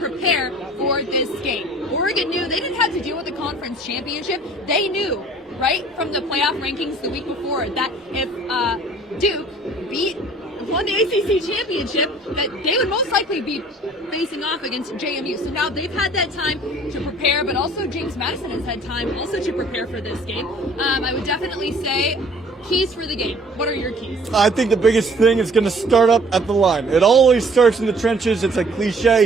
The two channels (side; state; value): both; normal; correlation 0.53